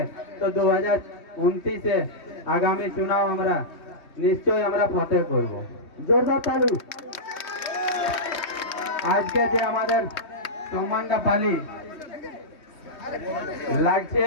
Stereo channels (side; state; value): right; late; 3.2 ms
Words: তো 2029-এ আগামী চুনাও আমরা নিশ্চয়ই আমরা ফতেহ করব। জোরদার তালি। আজকে যে আমাদের সম্মানটা পালি লাগছে